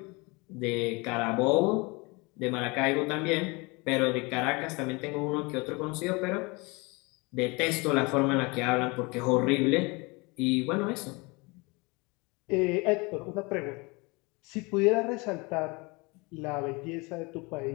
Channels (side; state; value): right; quieter; 27.0 dB